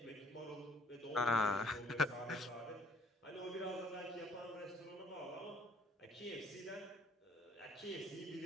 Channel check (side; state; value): both; normal; correlation 0.61